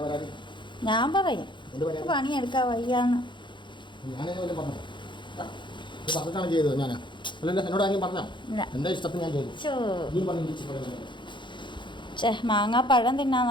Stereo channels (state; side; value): late; right; 0.23 ms